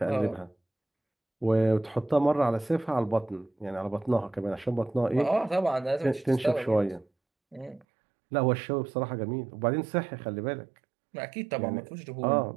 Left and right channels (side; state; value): left; drops out; at 7.9 s